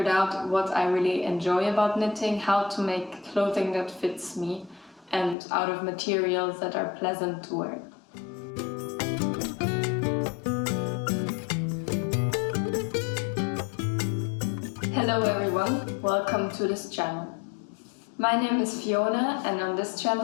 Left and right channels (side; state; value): right; drops out; at 5.4 s